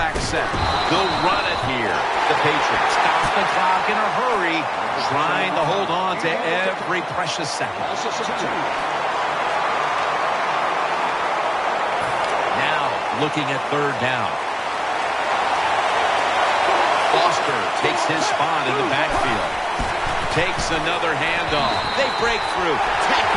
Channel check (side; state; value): both; identical; correlation 1.00